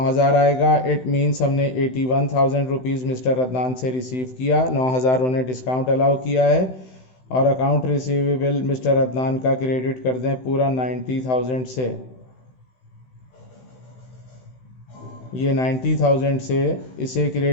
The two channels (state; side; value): late; right; 16 ms